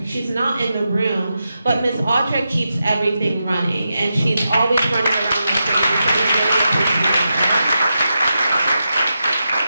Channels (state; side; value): inverted; both; correlation -0.88